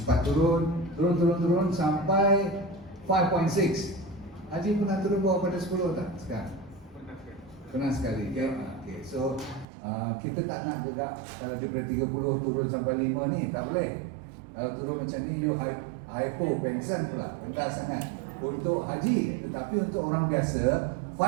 turun sampai 5.6. Haji pernah turun bawah pada 10 tak sekarang? Pernah sekali. Okay. So kita tak nak juga kalau daripada 30 turun sampai 5 ni, tak boleh. Kalau turun macam ni, you hypo, pengsan pula, rendah sangat untuk haji. Tetapi untuk orang biasa,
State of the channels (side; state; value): left; drops out; at 9.7 s